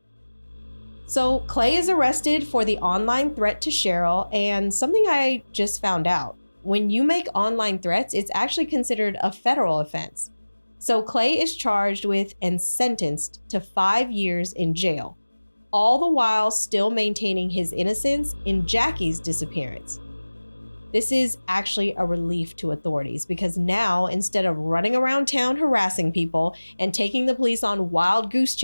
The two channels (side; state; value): both; inverted; correlation -1.00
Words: So Clay is arrested for the online threat to Cheryl, and something I just found out. When you make online threats, it's actually considered a federal offense. So Clay is charged with and sentenced to 5 years in jail, all the while still maintaining his innocence in Jacque's disappearance. This is actually a relief to authorities because now, instead of running around town harassing people and taking the police on wild goose